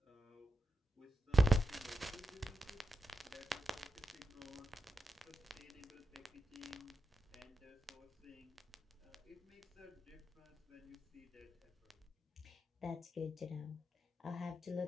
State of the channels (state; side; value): normal; both; correlation 0.87